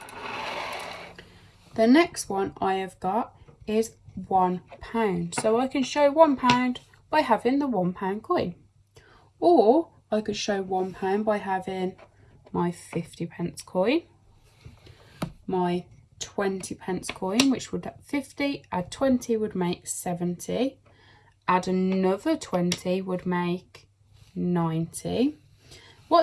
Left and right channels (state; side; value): identical; both; correlation 1.00